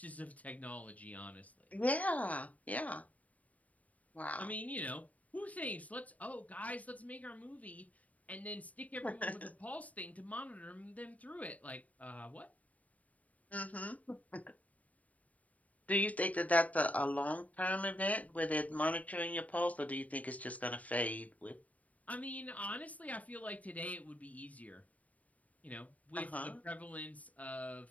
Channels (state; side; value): late; right; 0.071 ms